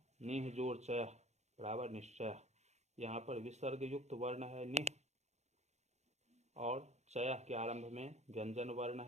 निह जोड़ चयः बराबर निश्चयः। यहाँ पर विसर्ग युक्त वर्ण है निह और चयः के आरंभ में व्यंजन वर्ण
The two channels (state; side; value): late; left; 0.33 ms